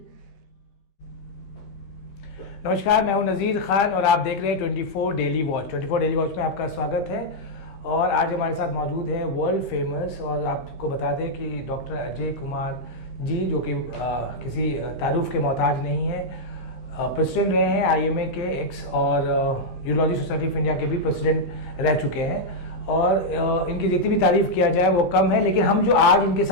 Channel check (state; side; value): late; right; 15 ms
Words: नमस्कार, मैं हूं नज़ीर खान और आप देख रहे हैं 24 डेली वॉच। 24 डेली वॉच में आपका स्वागत है। और आज हमारे साथ मौजूद है वर्ल्ड फेमस, और आपको बता दें कि डॉक्टर अजय कुमार जी, जो कि किसी तारुफ के मोहताज नहीं है, प्रेसिडेंट रहे हैं IMA के एक्स, और यूरोलॉजी सोसाइटी ऑफ इंडिया के भी प्रेसिडेंट रह चुके हैं। और इनकी जितनी भी तारीफ किया जाए वो कम है, लेकिन हम जो आज इनके